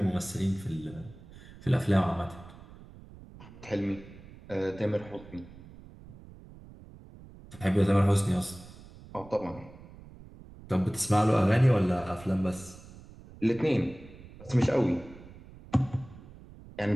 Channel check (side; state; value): right; noise; rumble, 19 dB below the sound